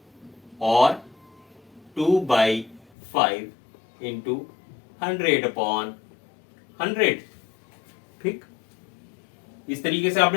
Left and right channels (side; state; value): right; drops out; at 2.9 s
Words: और 2/5 इंटू 100/100, ठीक। इस तरीके से